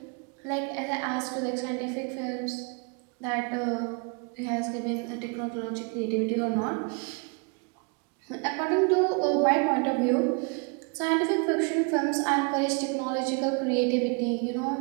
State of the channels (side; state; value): left; quieter; 34.6 dB